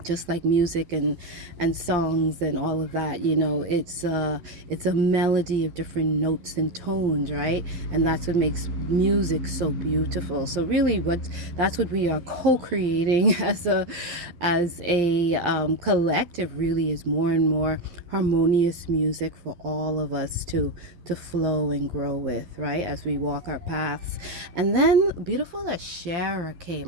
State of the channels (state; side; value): late; left; 11 ms